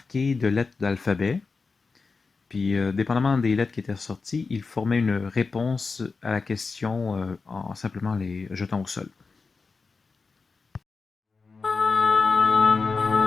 de lettres d'alphabet. Puis, dépendamment des lettres qui étaient sorties, il formait une réponse à la question en simplement les jetant au sol.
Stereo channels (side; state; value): right; quieter; 4.4 dB